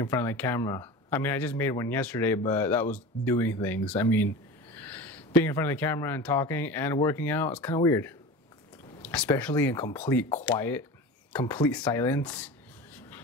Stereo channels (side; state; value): both; normal; correlation 0.32